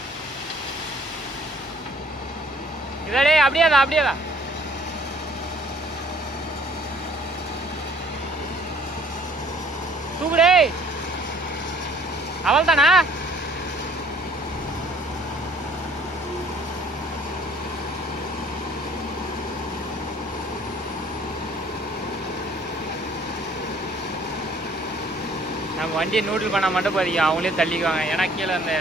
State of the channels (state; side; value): normal; both; correlation 0.58